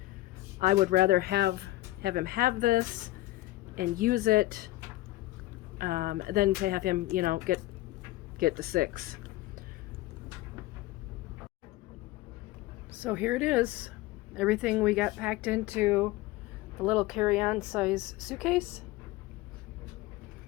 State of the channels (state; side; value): quieter; right; 17.6 dB